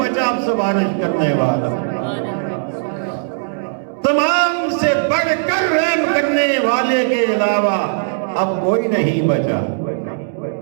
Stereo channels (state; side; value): silent; left; 67 dB below the other